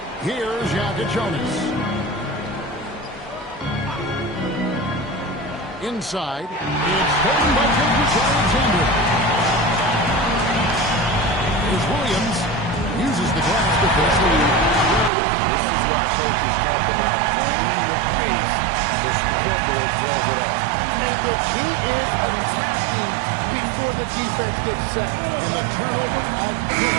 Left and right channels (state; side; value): drops out; left; at 15.1 s